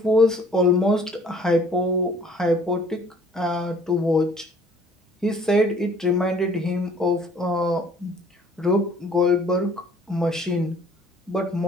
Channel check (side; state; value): both; normal; correlation 0.56